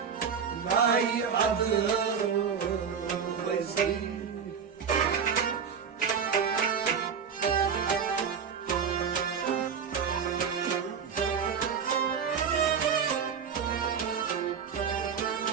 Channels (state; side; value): quieter; left; 6.8 dB